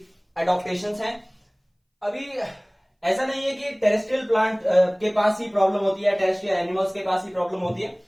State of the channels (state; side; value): identical; both; correlation 1.00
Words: एडॉप्टेशंस हैं। अभी ऐसा नहीं है कि टेरेस्ट्रियल प्लांट के पास ही प्रॉब्लम होती है, टेरेस्ट्रियल एनिमल्स के पास ही प्रॉब्लम होती है।